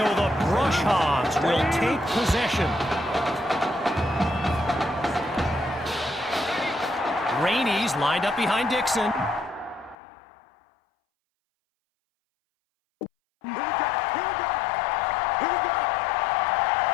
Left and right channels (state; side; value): drops out; right; at 10.0 s